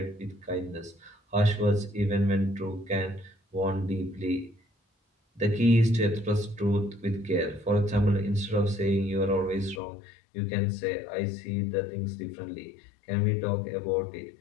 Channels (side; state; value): right; drops out; at 9.8 s